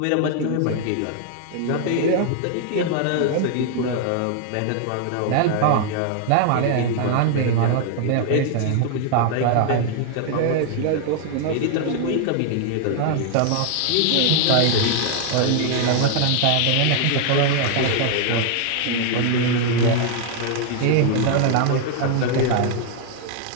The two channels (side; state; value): both; different; correlation 0.00